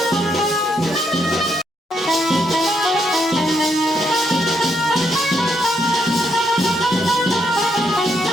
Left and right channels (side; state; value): both; normal; correlation 0.76